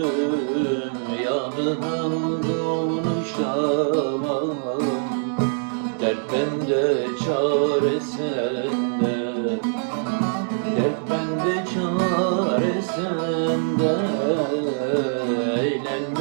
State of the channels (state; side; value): silent; left; digital silence